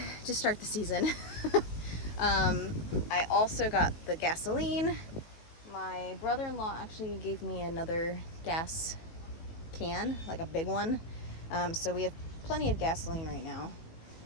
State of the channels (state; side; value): late; right; 19 ms